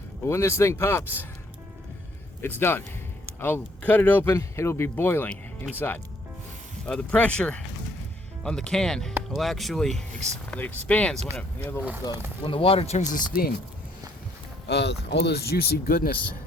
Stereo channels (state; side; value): normal; both; correlation 0.66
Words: But when this thing pops, it's done. I'll cut it open. It'll be boiling inside. The pressure on the can will actually it expands when when the water turns to steam. All those juicy goodness